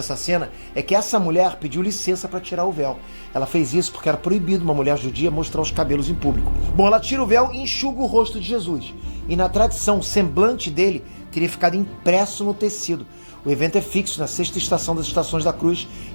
cena é que essa mulher pediu licença para tirar o véu. Ela fez isso porque era proibido uma mulher judia mostrar os cabelos em público. Bom, ela tira o véu e enxuga o rosto de Jesus. E na tradição, o semblante dele teria ficado impresso no tecido. O evento é fixo na sexta estação das Estações da Cruz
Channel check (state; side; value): inverted; both; correlation -1.00